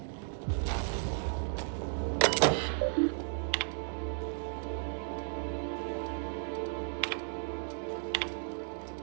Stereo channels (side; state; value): left; silent; 55 dB below the other